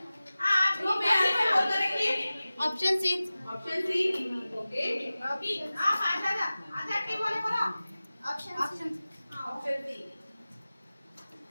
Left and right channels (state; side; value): inverted; both; correlation -0.97